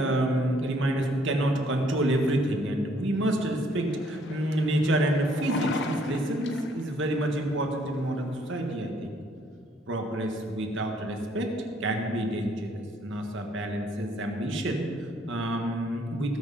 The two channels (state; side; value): normal; both; correlation 0.65